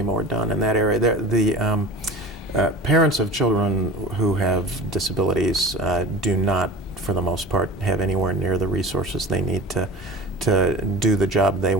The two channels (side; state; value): both; normal; correlation 0.35